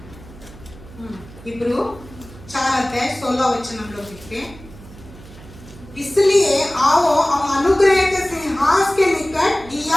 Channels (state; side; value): noise; right; hum, 19 dB below the sound